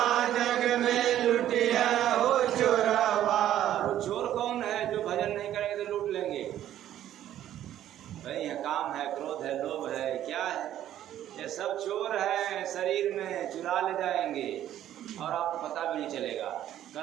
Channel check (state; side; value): quieter; left; 11.9 dB